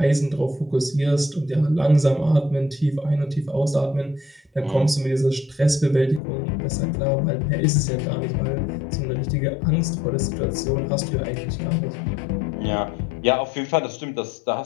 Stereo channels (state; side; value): drops out; right; at 6.2 s